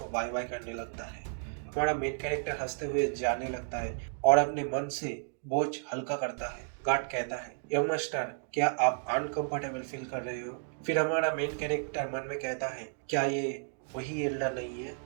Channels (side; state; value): left; silent; digital silence